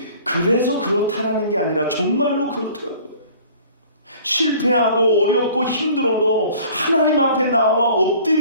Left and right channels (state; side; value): inverted; both; correlation -0.50